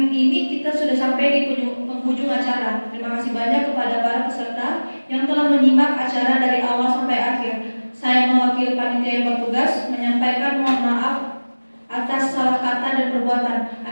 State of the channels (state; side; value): inverted; both; correlation -1.00